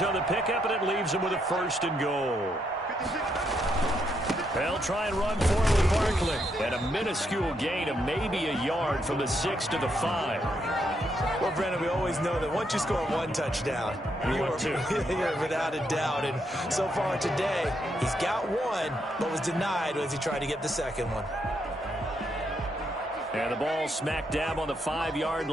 on the pickup, and it leaves him with a 1st and goal. They'll try and run forward with Barkley. And a minuscule gain of maybe a yard from the 6 to the 5. Well, Brandon, we always know that once you score 1 touchdown, you're without a doubt. And so far today, he's got 1, but was denied as he tried to get the 2nd one. And the ball smack dab on the 5-yard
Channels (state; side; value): normal; both; correlation 0.77